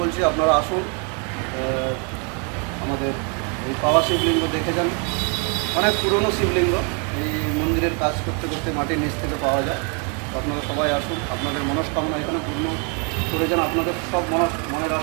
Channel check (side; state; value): left; quieter; 36.5 dB